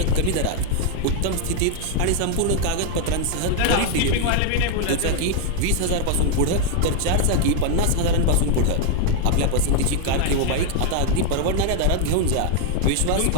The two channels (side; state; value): both; different; correlation 0.00